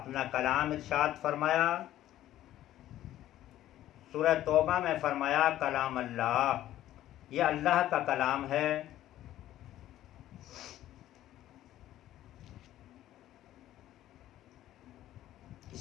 कलाम इरशाद फरमाया। सूरह तौबा में फरमाया कलाम अल्लाह, यह अल्लाह का कलाम है।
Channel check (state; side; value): quieter; right; 13.4 dB